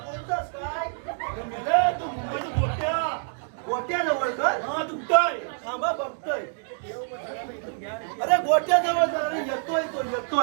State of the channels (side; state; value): left; silent; digital silence